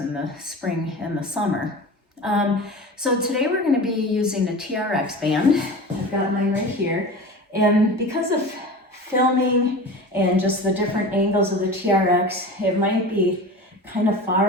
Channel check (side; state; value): both; normal; correlation 0.33